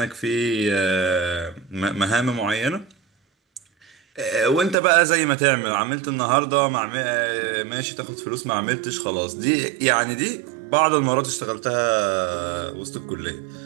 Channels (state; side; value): drops out; left; at 4.8 s